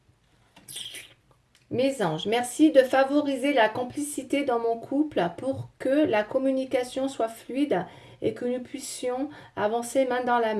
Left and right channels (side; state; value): both; identical; correlation 1.00